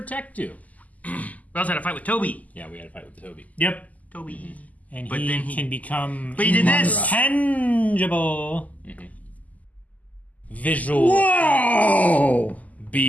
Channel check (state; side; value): late; right; 0.076 ms